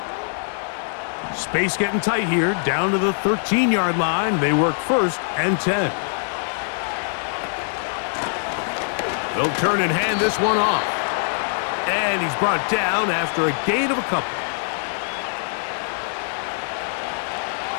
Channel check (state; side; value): silent; right; 64 dB below the other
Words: Space getting tight here, down to the 13-yard line. They work 1st and 10. They'll turn and hand this one off. And he's brought down after a gain of a couple.